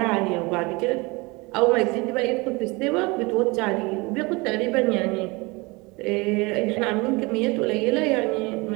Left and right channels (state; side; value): quieter; left; 25.3 dB